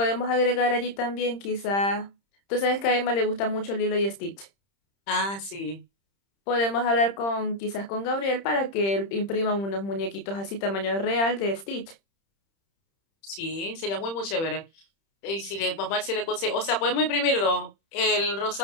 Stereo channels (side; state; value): right; late; 30 ms